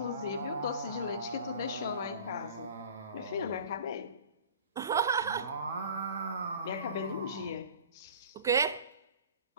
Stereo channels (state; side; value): inverted; both; correlation -0.43